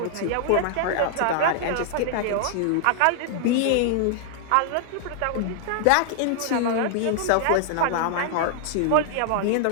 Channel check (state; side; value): different; both; correlation -0.01